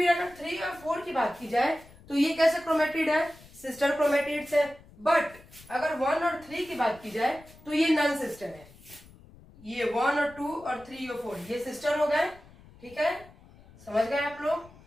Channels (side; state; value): left; noise; rumble, 23 dB below the sound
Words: अगर 3 और 4 की बात की जाए तो ये कैसे क्रोमेटिड है, सिस्टर क्रोमेटिड्स है। बट अगर 1 और 3 की बात की जाए तो ये नॉन सिस्टर है, ये 1 और 2 और 3 और 4 ये सिस्टर हो गए। ठीक है, समझ गए आप लोग।